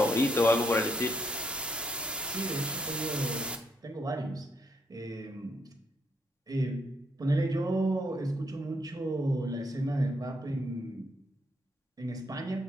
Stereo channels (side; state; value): both; normal; correlation 0.74